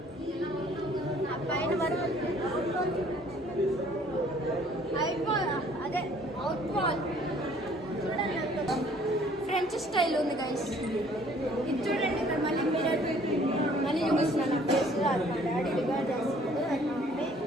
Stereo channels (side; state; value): both; normal; correlation 0.57